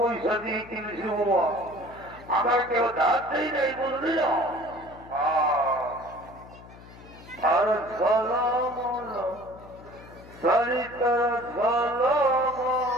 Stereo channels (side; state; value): left; noise; hum, 19 dB below the sound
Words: দিয়ে কিনেছি বাবা আমার কেউ ধার দেই নাই বুঝলি না আর ঝলমল সরিতার